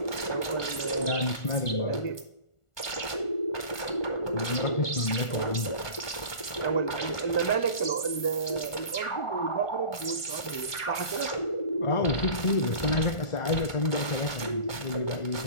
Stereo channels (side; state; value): right; late; 1.4 ms